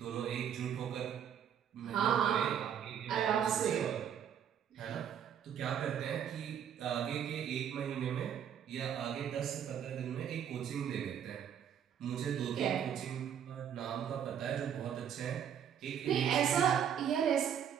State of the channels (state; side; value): quieter; left; 8.9 dB